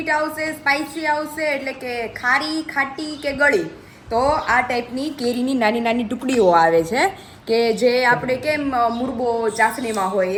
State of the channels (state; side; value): identical; both; correlation 1.00